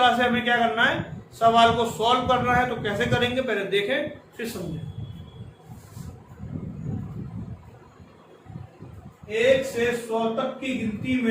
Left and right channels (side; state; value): both; identical; correlation 1.00